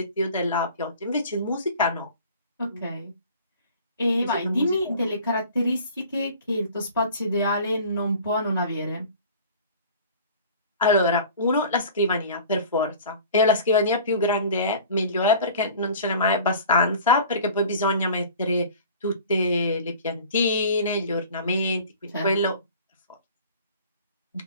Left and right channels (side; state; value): both; inverted; correlation -0.44